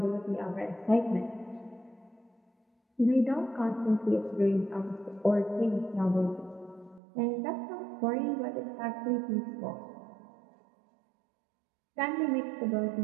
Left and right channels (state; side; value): drops out; left; at 7.0 s